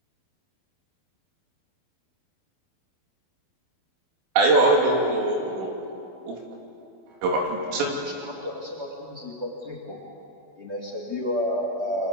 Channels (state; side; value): late; left; 12 ms